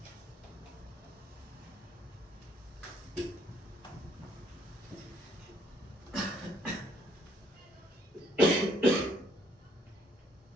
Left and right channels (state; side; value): normal; both; correlation 0.67